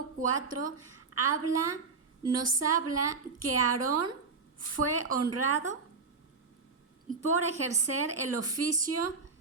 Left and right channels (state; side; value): quieter; left; 4.6 dB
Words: 4 nos habla que Aarón fue honrado por ejercer el oficio